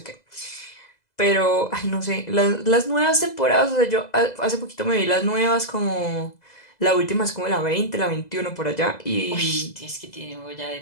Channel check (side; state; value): right; late; 2.0 ms